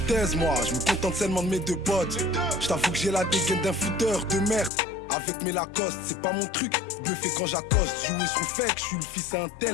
moi. Je me contente seulement de mes deux potes. Je t'avoue que j'ai la dégaine d'un fouteur de merde. Avec mes Lacoste, c'est pas mon truc. Bluffé quand j'accoste, jouer sous fake. Je suis le fils à un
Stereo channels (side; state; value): right; drops out; at 4.7 s